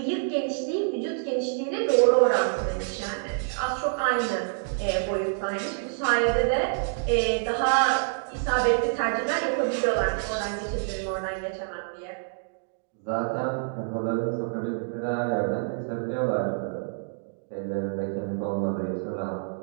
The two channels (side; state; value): left; silent; digital silence